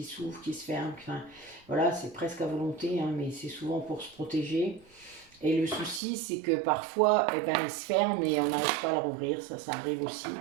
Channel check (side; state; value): left; drops out; at 6.0 s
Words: s'ouvre, qui se ferme. Enfin, voilà, c'est presque à volonté, hein, mais c'est souvent pour se protéger. Et le souci, c'est que parfois, eh ben, il se ferme et on n'arrive pas à le rouvrir. Ça arrive aussi,